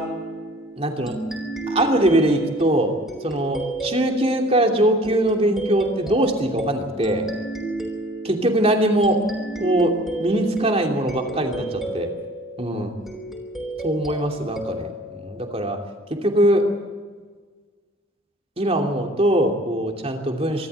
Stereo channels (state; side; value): normal; both; correlation 0.50